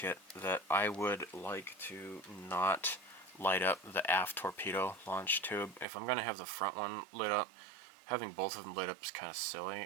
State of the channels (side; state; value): left; drops out; at 5.9 s